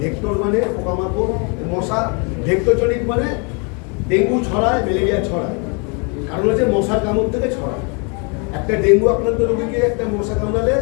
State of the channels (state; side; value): quieter; right; 34.4 dB